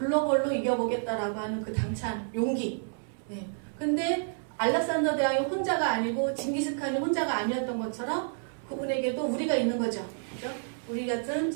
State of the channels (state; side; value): silent; left; 58 dB below the other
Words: 이겨보겠다라고 하는 그 당찬 용기. 네. 근데 알렉산더 대왕이 혼자가 아니고 징기스칸이 혼자가 아니었던 것처럼 그분에게도 우리가 있는 거죠. 그죠? 우리 같은